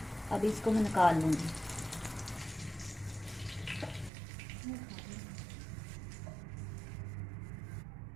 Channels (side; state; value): left; drops out; at 4.1 s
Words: अब इसको मैं निकाल लूँगी।